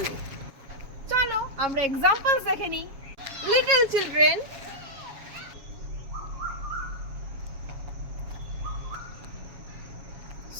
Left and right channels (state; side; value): late; left; 7.3 ms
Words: চলো আমরা এক্সাম্পলস দেখে নিই। Little children,